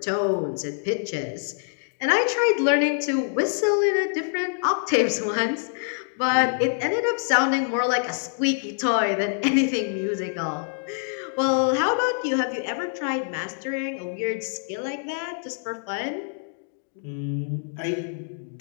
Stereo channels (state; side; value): silent; right; digital silence